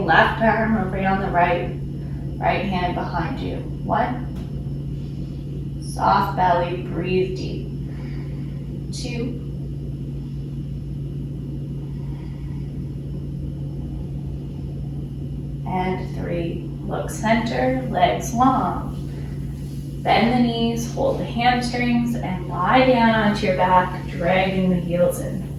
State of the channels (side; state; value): both; identical; correlation 1.00